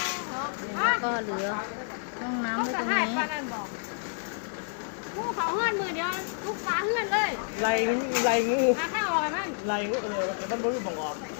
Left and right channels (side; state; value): right; silent; digital silence